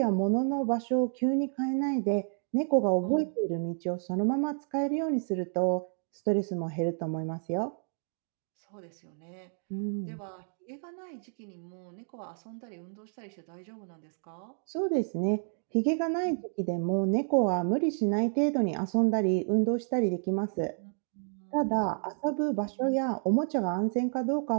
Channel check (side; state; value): left; silent; 58 dB below the other